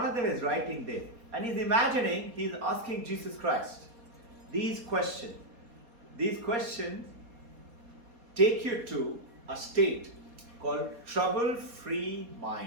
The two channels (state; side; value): late; left; 4.2 ms